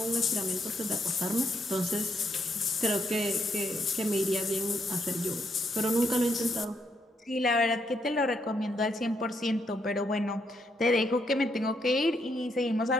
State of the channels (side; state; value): both; normal; correlation 0.76